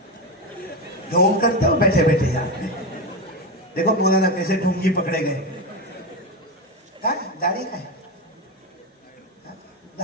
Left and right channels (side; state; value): both; normal; correlation 0.15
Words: ढोंग करते हो बैठे बैठे यार। देखो मौलाना कैसे ढोंगी पकड़े गए। दाढ़ी का है,